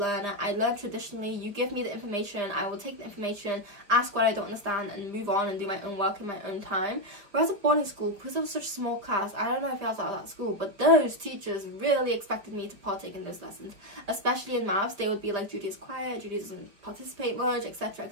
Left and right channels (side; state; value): left; late; 5.1 ms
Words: I learned traditionally. You give me the information, I will take the information, ask what I don't understand, and move on and do my own work in my own time. Whereas at boarding school, because it was such a small class, I don't know if I was out of that school, but those teachers really expected me to partake in those lessons. Especially in maths, they would be like, Judy is quiet, Judy doesn't participate much, etc,